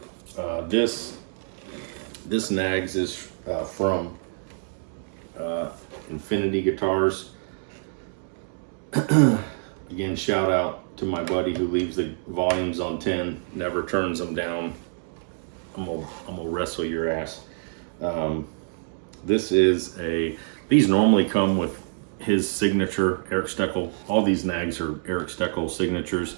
This Nags is from Infinity Guitars. Again, shout out to my buddy who leaves the volumes on 10, never turns them down. I'm gonna wrestle your ass. These normally come with his signature, Eric Steckel. All these Nags are Eric Steckel signatures.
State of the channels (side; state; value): left; silent; digital silence